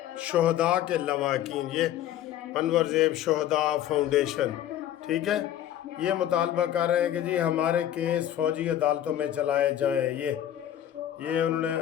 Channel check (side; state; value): right; quieter; 11.5 dB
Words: شہداء کے لواحقین، یہ انور زیب شہداء فاؤنڈیشن، ٹھیک ہے، یہ مطالبہ کر رہے ہیں کہ جی ہمارے کیس فوجی عدالتوں میں چلائے جائیں۔ یہ انہوں نے